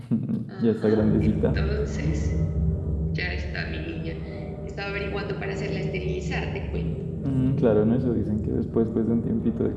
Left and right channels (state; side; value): identical; both; correlation 1.00